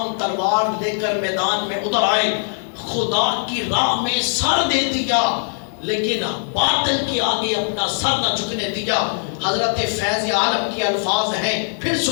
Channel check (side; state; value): right; silent; 65 dB below the other